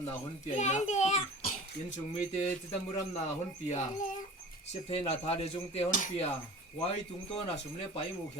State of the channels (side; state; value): both; normal; correlation 0.40